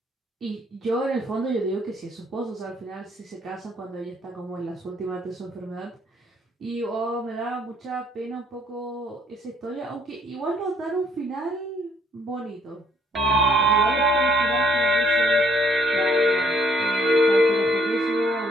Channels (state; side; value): normal; both; correlation 0.65